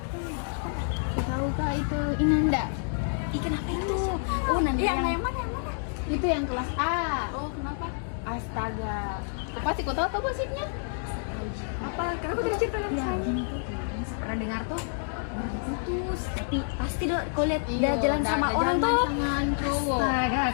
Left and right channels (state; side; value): silent; right; digital silence